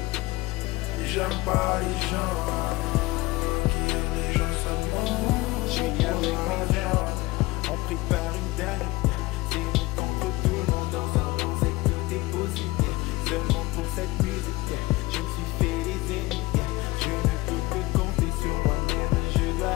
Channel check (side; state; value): right; quieter; 20.5 dB